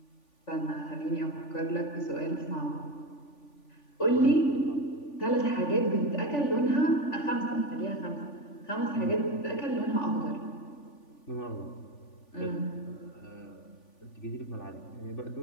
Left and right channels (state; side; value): late; right; 3.5 ms